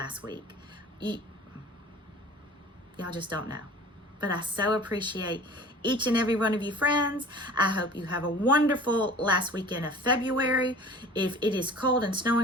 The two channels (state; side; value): normal; both; correlation 0.43